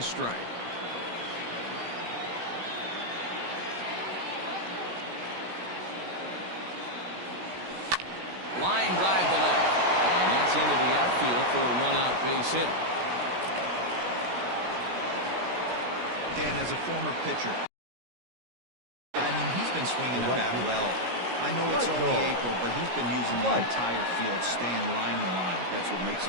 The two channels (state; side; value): late; left; 17 ms